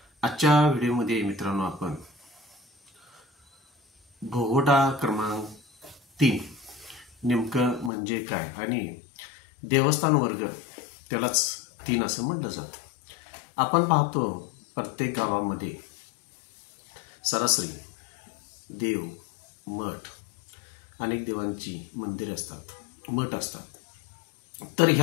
आजच्या व्हिडिओमध्ये मित्रांनो आपण भोगवटा क्रमांक 3 नेमकं म्हणजे काय आणि देवस्थान वर्ग त्यालाच 3 असं म्हटलं जातं. आपण पाहतो प्रत्येक गावामध्ये सरासरी देव, मठ, अनेक देवांची मंदिरे असतात, मठ असतात. तर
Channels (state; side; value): drops out; right; at 7.9 s